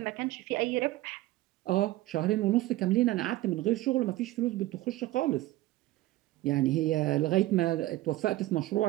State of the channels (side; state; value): left; quieter; 17.1 dB